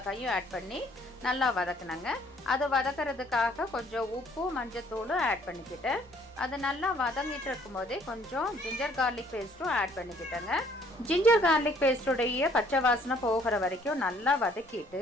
ஆட் பண்ணி நல்லா வதக்குனாங்க. அது வதக்கிறதுக்காக கொஞ்சம் உப்பும் மஞ்சத்தூளும் ஆட் பண்ணிக்கிட்டேன். அது நல்லா வதங்கிட்டு இருக்கும் போதே கொஞ்சம் ஜிஞ்சர் கார்லிக் பேஸ்ட்டும் ஆட் பண்ணிக்கிட்டேங்க. ஜிஞ்சர் கார்லிக் பேஸ்டுடைய பச்சை வாசனை போகிற வரைக்கும் நல்லா வதக்கிட்டு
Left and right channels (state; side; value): noise; left; rumble, 27 dB below the sound